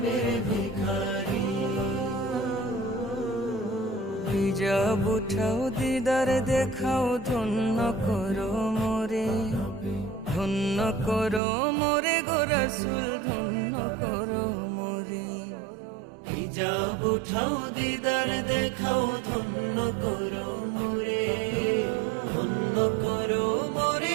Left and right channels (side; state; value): left; drops out; at 11.4 s